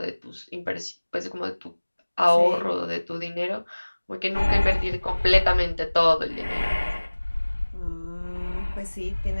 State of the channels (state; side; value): inverted; both; correlation -1.00